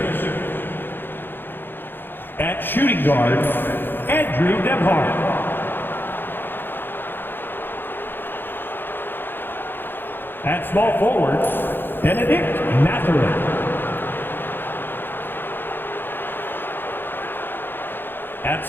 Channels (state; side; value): late; right; 0.099 ms